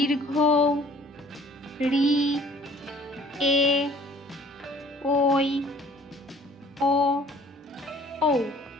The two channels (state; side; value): normal; both; correlation 0.54